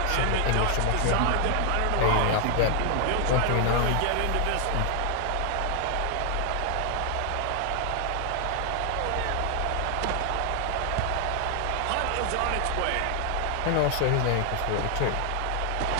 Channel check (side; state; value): both; different; correlation 0.00